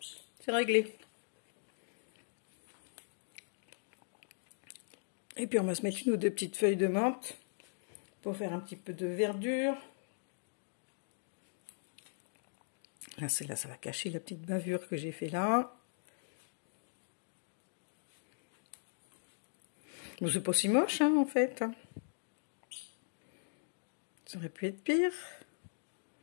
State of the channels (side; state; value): right; silent; digital silence